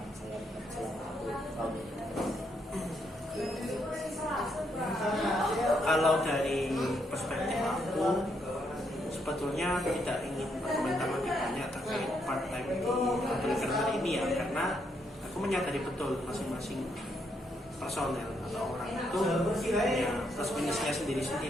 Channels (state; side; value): normal; both; correlation 0.76